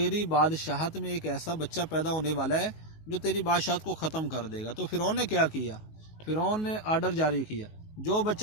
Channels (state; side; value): late; right; 19 ms